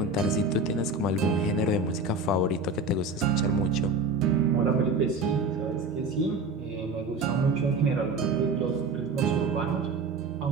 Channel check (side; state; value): left; quieter; 3.4 dB